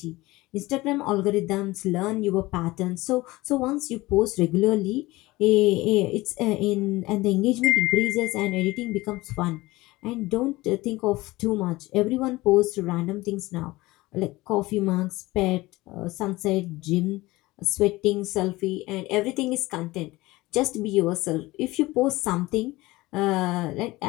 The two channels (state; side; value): quieter; right; 19.9 dB